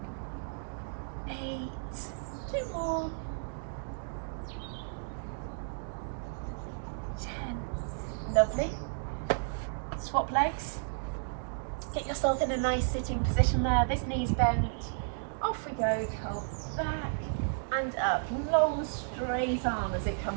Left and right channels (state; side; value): silent; left; digital silence